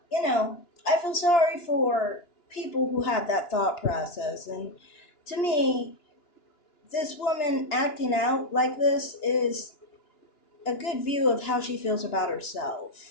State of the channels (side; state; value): right; late; 2.9 ms